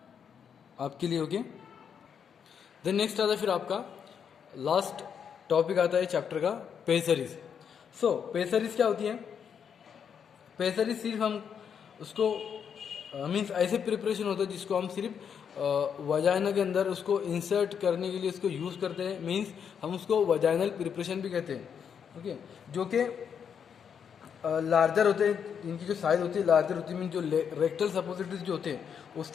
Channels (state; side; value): quieter; right; 7.5 dB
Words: आपके लिए। ओके, देन नेक्स्ट आता है फिर आपका लास्ट टॉपिक आता है चैप्टर का पेसरीज। सो पेसरीज क्या होती है? पेसरीज सिर्फ हम उसको मीन्स ऐसे प्रिपरेशन होता है जिसको हम सिर्फ वजाइना के अंदर उसको इंसर्ट करने के लिए उसको यूज़ करते हैं, मीन्स हम उसको वजाइनल प्रिपरेशन भी कहते हैं। ओके, जो कि लार्जर होते हैं, इनकी जो साइज होती है लार्जर होती है, मीन जो रेक्टल सपोजिटरीज जो होते हैं